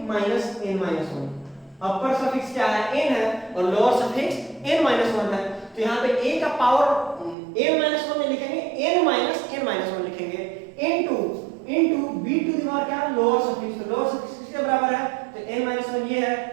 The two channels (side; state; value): left; drops out; at 7.4 s